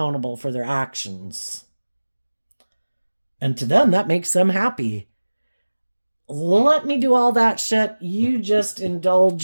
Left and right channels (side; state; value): both; inverted; correlation -1.00